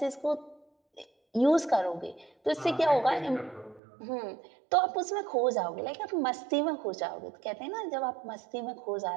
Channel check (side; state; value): left; drops out; at 3.8 s